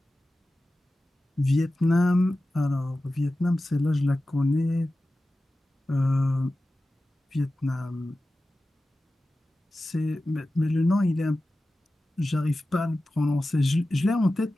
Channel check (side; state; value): both; normal; correlation 0.95